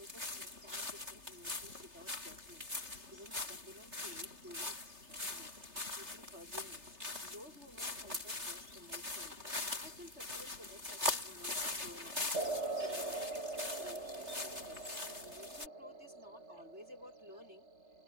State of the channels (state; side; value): late; left; 3.3 ms